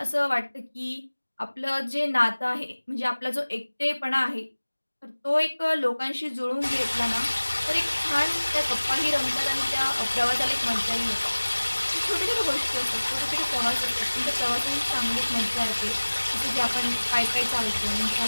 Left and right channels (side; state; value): both; inverted; correlation -1.00